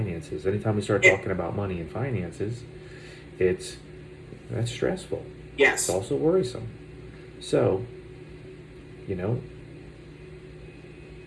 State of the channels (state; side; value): identical; both; correlation 1.00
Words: Anytime we start talking about money and finances, that's stressful. Yes. It's also worrisome. So,